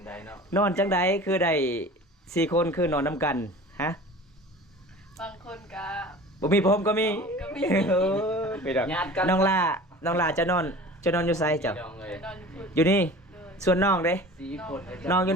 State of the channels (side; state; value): both; normal; correlation 0.40